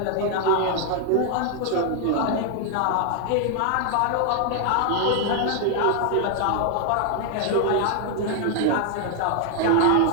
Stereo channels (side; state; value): both; different; correlation 0.00